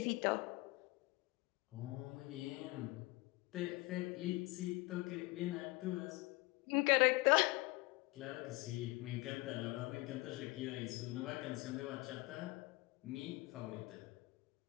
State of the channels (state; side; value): quieter; right; 22.8 dB